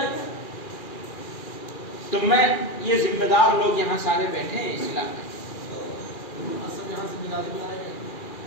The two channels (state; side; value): late; right; 2.4 ms